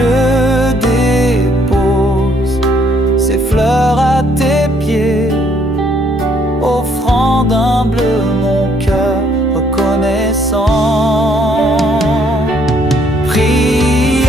dépose ces fleurs à tes pieds, offrant d'humble mon cœur reconnaissant.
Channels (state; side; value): normal; both; correlation 0.66